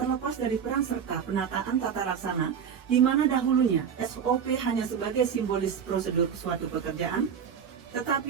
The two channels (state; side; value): quieter; left; 7.4 dB